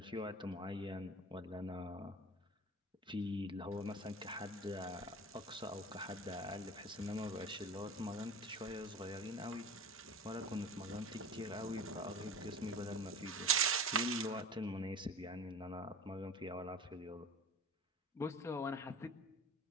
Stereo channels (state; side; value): normal; both; correlation 0.34